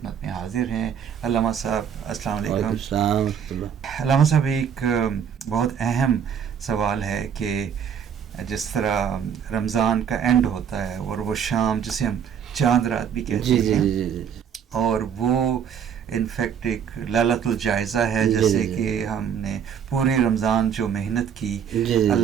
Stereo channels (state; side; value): quieter; left; 8.0 dB